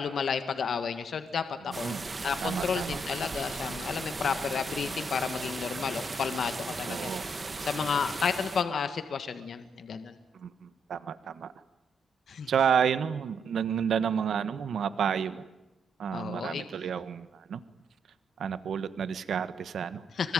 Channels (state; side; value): normal; both; correlation 0.75